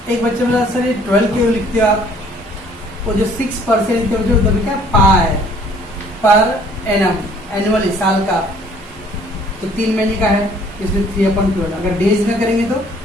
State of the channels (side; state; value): both; normal; correlation 0.57